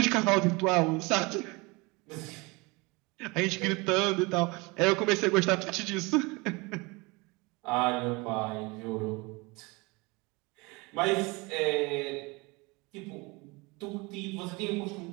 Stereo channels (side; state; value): left; quieter; 26.0 dB